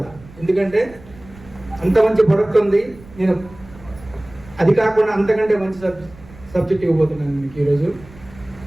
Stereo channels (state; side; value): noise; right; rumble, 21 dB below the sound